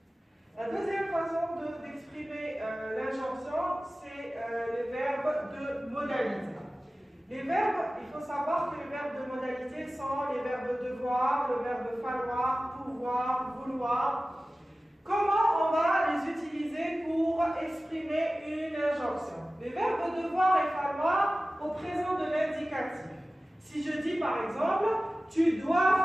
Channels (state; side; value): normal; both; correlation 0.96